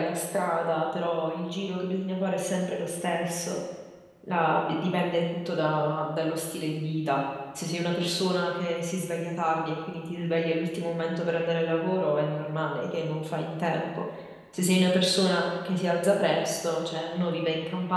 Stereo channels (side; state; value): both; identical; correlation 1.00